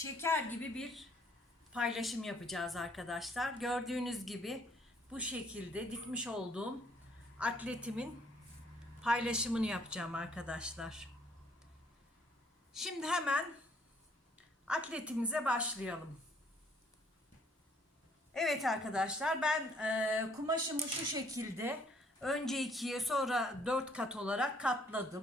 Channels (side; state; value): both; normal; correlation 0.64